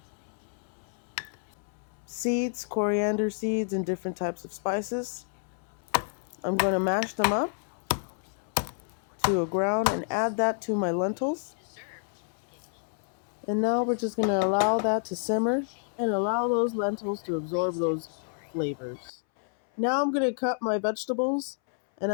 seeds, coriander seeds, and different types of spices. I'm going to mash them up to a ground and add that to my lentils. And now we're just going to allow that to simmer and allow those lentils to absorb those flavors. Now I'm going to cut my vegetables, and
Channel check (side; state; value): right; silent; 58 dB below the other